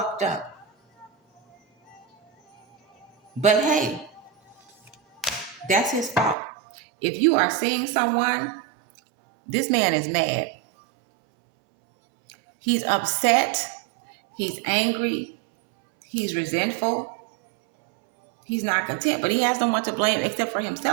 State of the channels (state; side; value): drops out; left; at 6.4 s